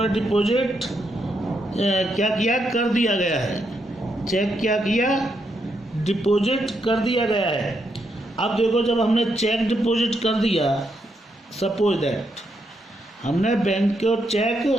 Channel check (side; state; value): both; normal; correlation 0.80